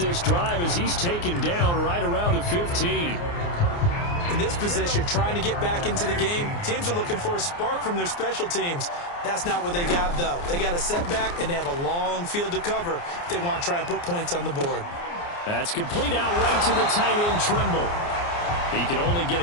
drive as he's taken down right around the 15. In this position, trying to get back into the game, teams are looking for a spark from their special teams. That's not what they got, though. They got a setback, and they have a long field to cover if they want to try and put points on the board. That's complete out right to the tight end, Trimble. He can only get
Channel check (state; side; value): late; right; 29 ms